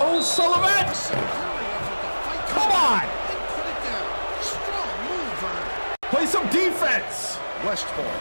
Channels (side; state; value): both; inverted; correlation -1.00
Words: Sullivan! Come on! Play some defense!